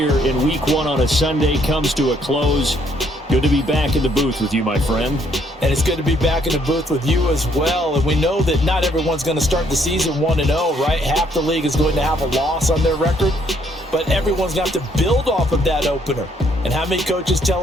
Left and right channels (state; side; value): normal; both; correlation 0.68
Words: in Week 1 on a Sunday comes to a close. Good to be back in the booth with you, my friend. And it's good to be back in the booth with you as well. And we know that not everyone's going to start the season 1-0, right? Half the league is going to have a loss on their record, but everyone's got to build off of that opener. And how many coaches